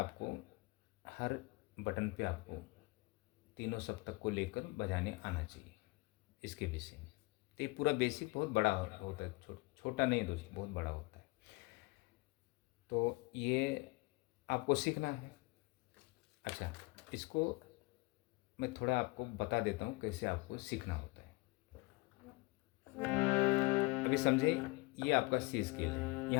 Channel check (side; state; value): right; quieter; 25.1 dB